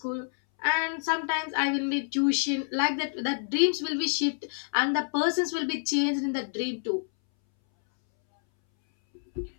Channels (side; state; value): right; silent; 59 dB below the other